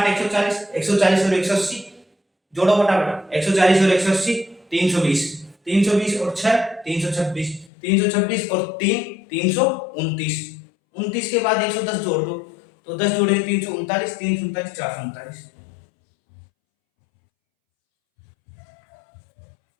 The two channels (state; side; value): drops out; right; at 7.7 s